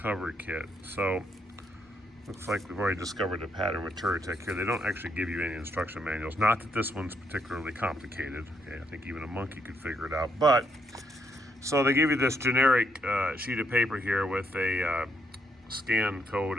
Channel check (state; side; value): normal; both; correlation 0.75